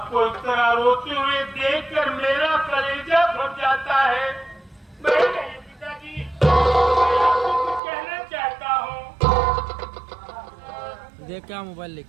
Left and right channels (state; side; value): drops out; left; at 7.8 s